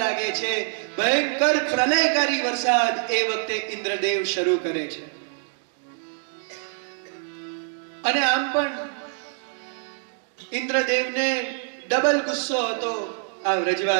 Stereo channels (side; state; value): left; silent; digital silence